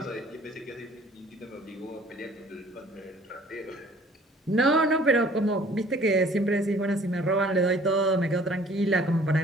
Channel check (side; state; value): both; normal; correlation 0.54